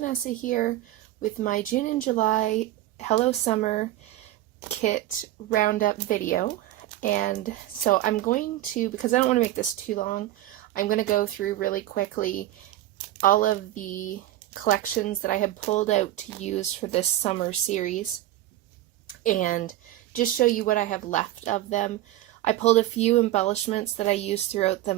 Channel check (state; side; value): quieter; left; 14.6 dB